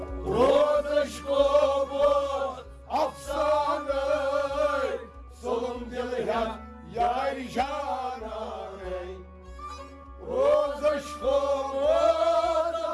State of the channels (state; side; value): identical; both; correlation 1.00